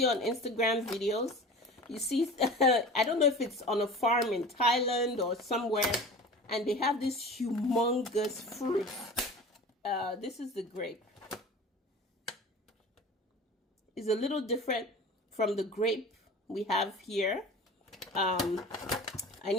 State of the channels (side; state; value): both; normal; correlation 0.37